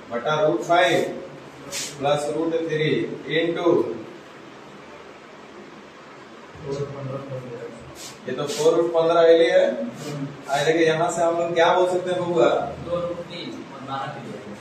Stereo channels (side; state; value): both; identical; correlation 1.00